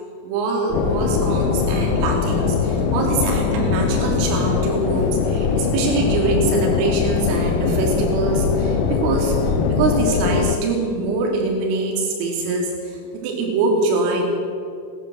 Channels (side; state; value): left; late; 29 ms